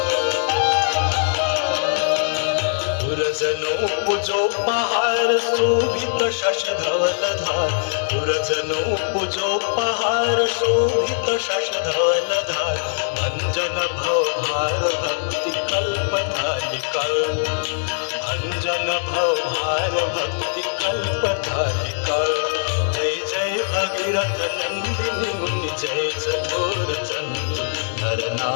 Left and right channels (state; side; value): silent; right; 65 dB below the other